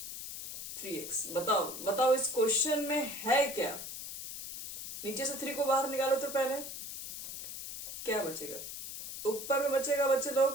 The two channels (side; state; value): left; noise; hiss, 8 dB below the sound